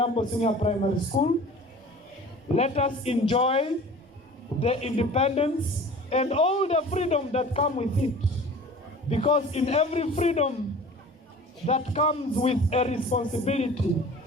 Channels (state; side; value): normal; both; correlation 0.43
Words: Senior Primary School, let us enjoy the independence and all the freedom that come with it. Because in every freedom that comes with a responsibility,